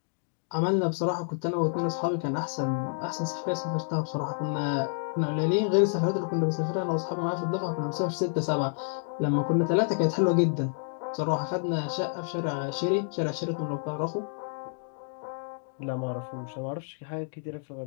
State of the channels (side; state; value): right; silent; digital silence